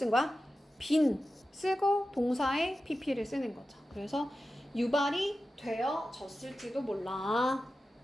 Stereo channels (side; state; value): both; normal; correlation 0.93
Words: 거야? been 쓰고 동사의 pp를 쓰는 거죠. 그래서 유발이 되어졌을지도 몰라.